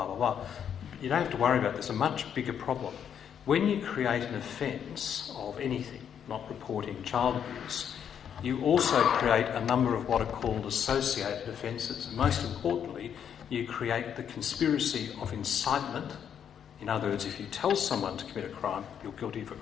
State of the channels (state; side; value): quieter; right; 8.5 dB